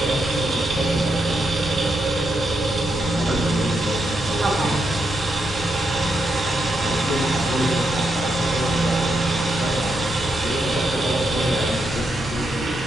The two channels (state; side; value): normal; both; correlation 0.82